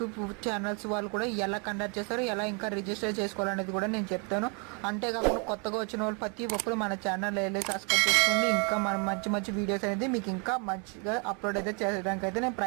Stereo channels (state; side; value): quieter; left; 35.0 dB